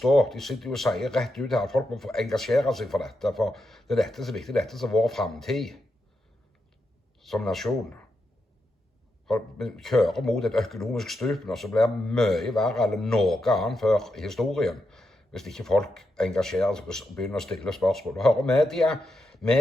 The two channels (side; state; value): both; normal; correlation 0.85